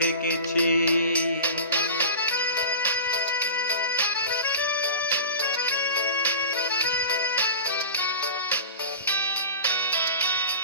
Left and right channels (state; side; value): inverted; both; correlation -0.34